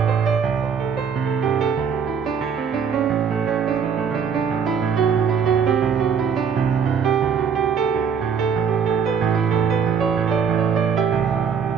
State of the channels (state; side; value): quieter; left; 6.8 dB